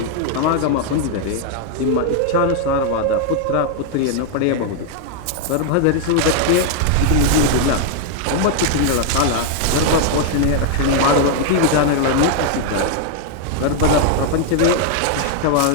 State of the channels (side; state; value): both; different; correlation 0.00